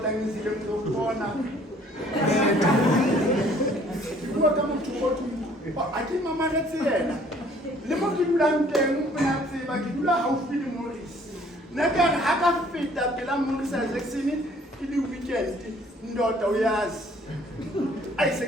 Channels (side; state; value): both; normal; correlation 0.58